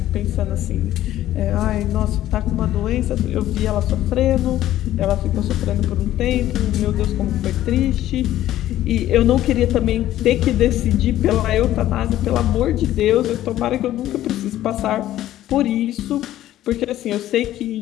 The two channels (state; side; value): quieter; right; 13.5 dB